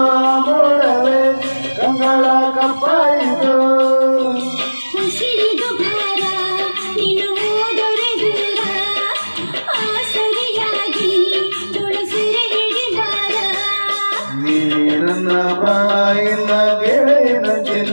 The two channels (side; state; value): both; inverted; correlation -1.00